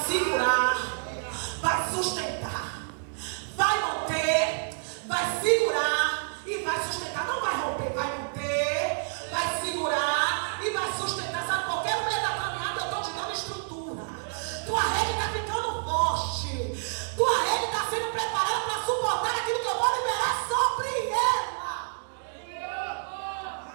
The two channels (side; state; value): left; silent; digital silence